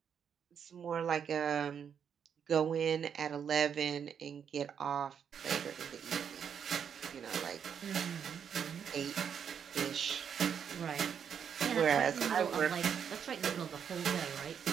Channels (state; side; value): quieter; left; 7.7 dB